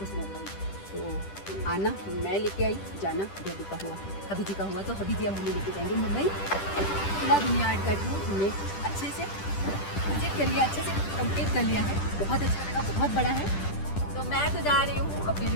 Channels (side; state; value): right; late; 10 ms